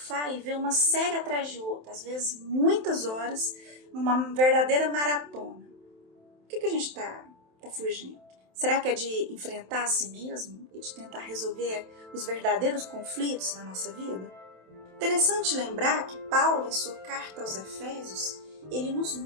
e vê uma série atrás de outra, às vezes muitas horas, numa verdadeira maratona? O que a gente está fugindo? Será que é de enfrentar a si mesmo e de tentar resolver os verdadeiros conflitos na nossa vida? Interessante lembrar que Paulo, em sua carta aos Efésios, ele nos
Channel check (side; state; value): left; late; 27 ms